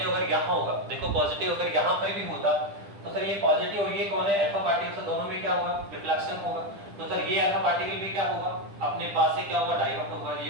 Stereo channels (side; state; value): left; late; 10 ms